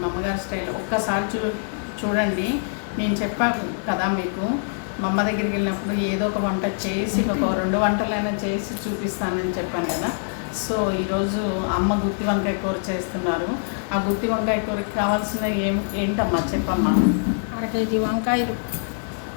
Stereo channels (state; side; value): silent; right; digital silence